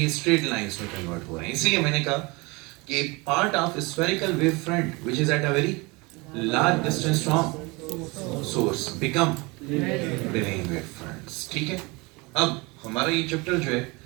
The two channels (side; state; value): left; quieter; 25.7 dB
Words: straight lines में convert हो रहे हैं। इसलिए मैंने कहा कि part of spherical wave front which is at a very large distance from source become plane wave fronts. ठीक है? अब हमारा ये चैप्टर जो है